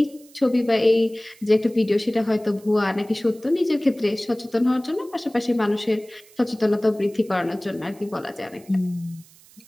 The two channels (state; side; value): noise; right; hiss, 26 dB below the sound